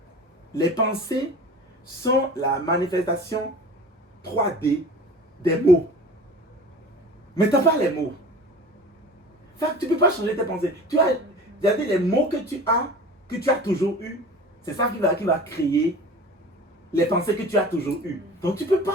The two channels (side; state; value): both; normal; correlation 0.39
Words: les pensées sont la manifestation 3D des mots. Mais tu n'as pas les mots. Fait que tu ne peux pas changer tes pensées. Tu as les mots que tu as toujours eu. C'est ça qui va créer les pensées que tu as toujours eues. Donc tu ne peux